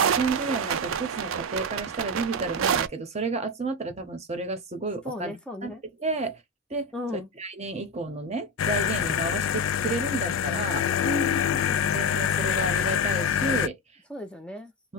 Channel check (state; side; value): normal; both; correlation 0.15